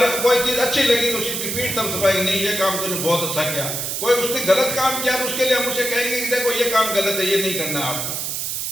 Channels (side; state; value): right; noise; hiss, 3 dB below the sound